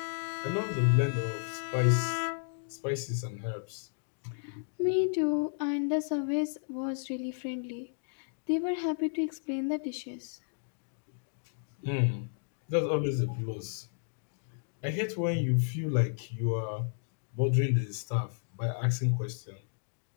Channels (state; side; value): silent; right; digital silence